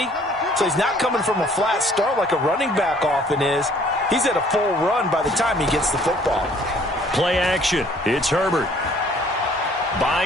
so he's not coming from a flat start like a running back often is. He's at a full run by the time he gets the football. Play action. It's Herbert.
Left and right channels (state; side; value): normal; both; correlation 0.57